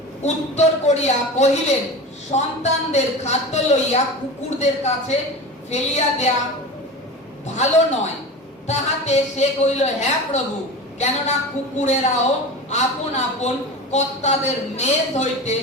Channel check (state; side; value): normal; both; correlation 0.30